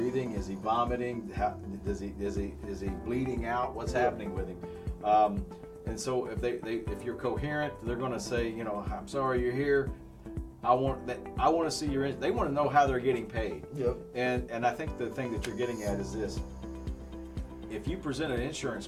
Is he vomiting? Is he bleeding out? What's happening with him? And so if you're coherent, they're going to say, I'm sorry you're here. I want to see your. They want to know how they're getting paid. And I think the thing that you're getting at is this: if you present an insurance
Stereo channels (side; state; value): both; identical; correlation 1.00